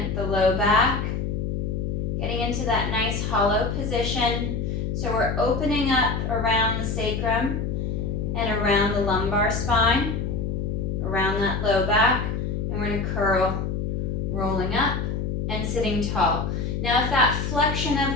the low back, getting into that nice hollow position. So we're opening up around the sacrum and around the lumbar spine, around that low back, and we're going to curl, rolling up and sitting tall. Now if that flexion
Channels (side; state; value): left; noise; hum, 1 dB below the sound